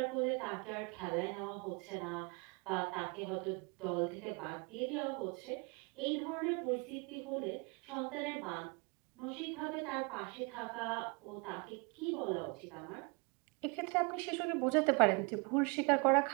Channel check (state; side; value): quieter; left; 31.2 dB